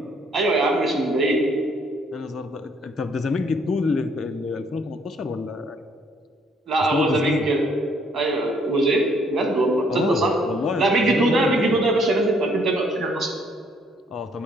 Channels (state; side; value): normal; both; correlation 0.65